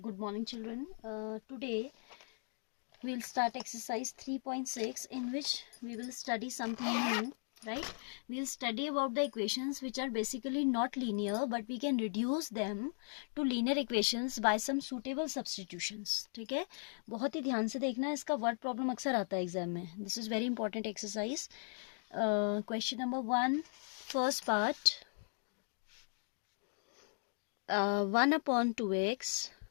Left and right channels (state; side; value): silent; right; 53 dB below the other